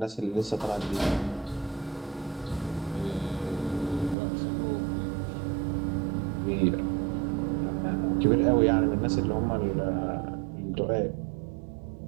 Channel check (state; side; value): drops out; left; at 4.2 s